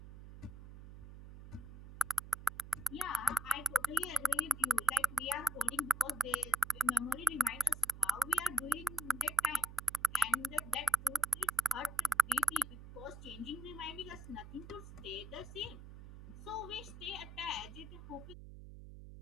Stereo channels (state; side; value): noise; right; hum, 15 dB below the sound